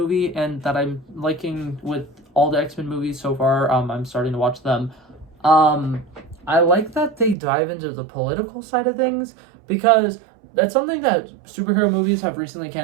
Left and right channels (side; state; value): left; drops out; at 7.4 s